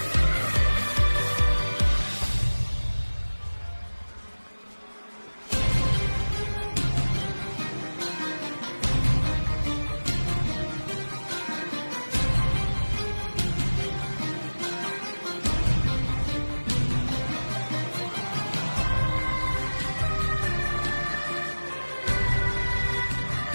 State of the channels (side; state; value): both; inverted; correlation -1.00